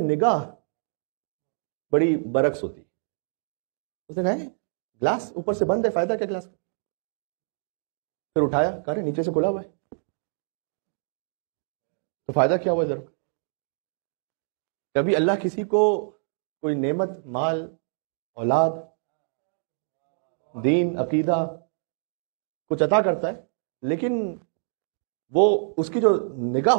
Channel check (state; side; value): silent; left; digital silence